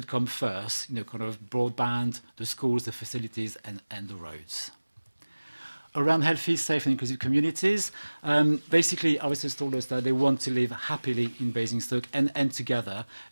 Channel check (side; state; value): both; inverted; correlation -1.00